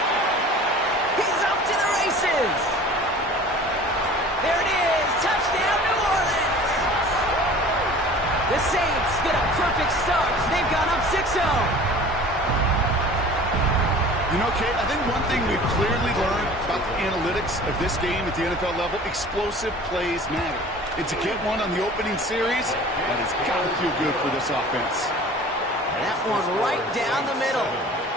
He's off to the races. There it is. Touchdown, New Orleans. The Saints get a perfect start. They've gone up 6-0. You know, Kate, I think one thing we've clearly learned about the analytics of this game at the NFL level, explosive plays matter. And to get one on the opening series, that has got to feel good for this offense. That one right down the middle.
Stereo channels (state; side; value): normal; both; correlation 0.44